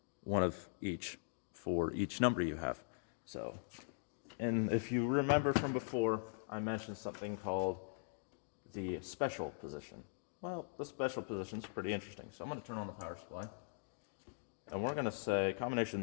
one of each for each number you have. So, and if you remember from before, I mentioned something called the special position. Well, the special position is pretty interesting. So I'm going to turn on the power supply. And we're going to say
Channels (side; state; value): right; silent; digital silence